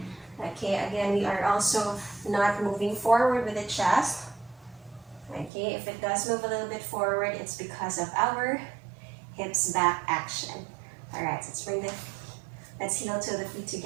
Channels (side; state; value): left; drops out; at 5.5 s